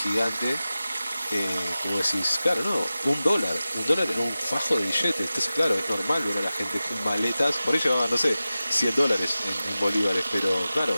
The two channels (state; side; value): inverted; both; correlation -0.95